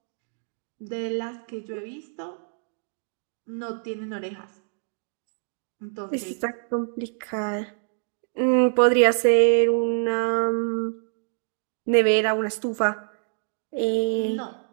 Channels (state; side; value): silent; left; digital silence